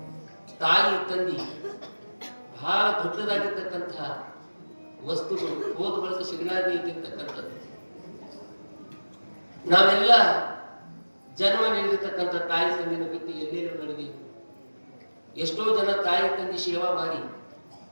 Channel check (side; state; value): both; inverted; correlation -1.00